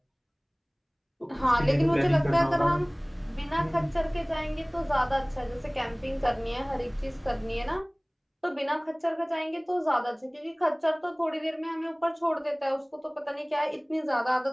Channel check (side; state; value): both; identical; correlation 1.00